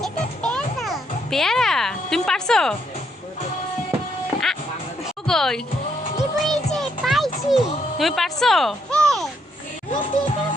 পেয়ারা? তুমি পারছো? কই তুমি পারছো?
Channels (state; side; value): normal; both; correlation 0.74